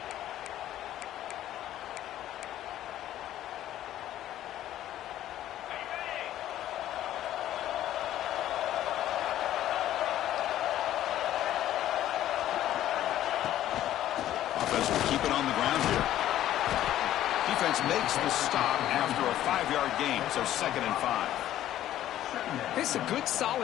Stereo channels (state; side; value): quieter; right; 12.7 dB